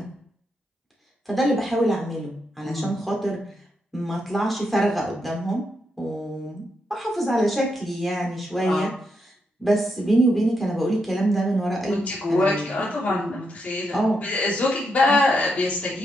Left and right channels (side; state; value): both; normal; correlation 0.82